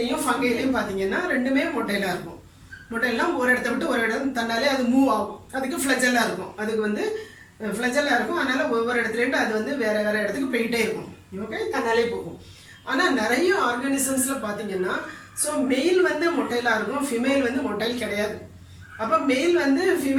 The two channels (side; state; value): both; identical; correlation 1.00